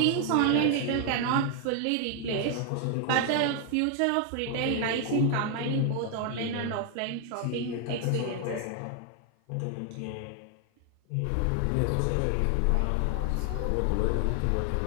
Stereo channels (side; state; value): both; different; correlation 0.00